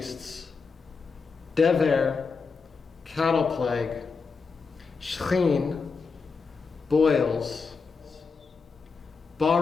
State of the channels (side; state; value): right; quieter; 4.9 dB